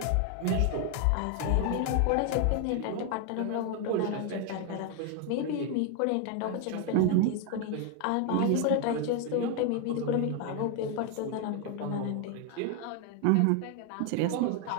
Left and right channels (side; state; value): both; different; correlation 0.01